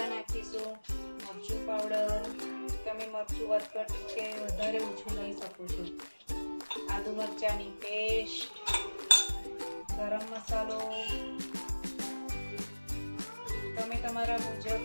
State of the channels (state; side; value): inverted; both; correlation -1.00